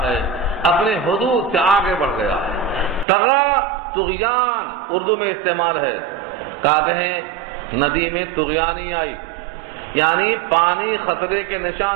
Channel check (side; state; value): left; drops out; at 3.1 s